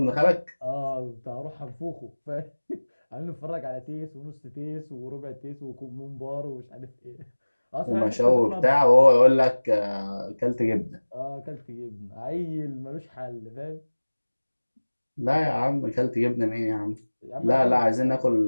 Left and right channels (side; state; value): both; inverted; correlation -1.00